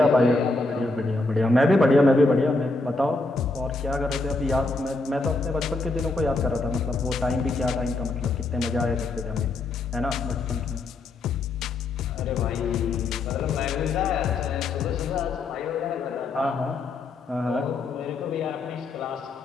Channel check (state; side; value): quieter; right; 3.3 dB